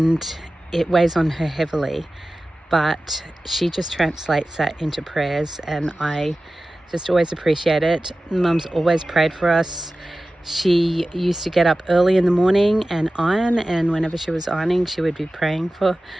it weighs on her heavily, but she just translates that into prayers, and I just always appreciate it. Mum's always prayed for us. She used to get up early in the morning and iron, and whenever she was ironing, she would be praying for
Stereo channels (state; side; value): normal; both; correlation 0.95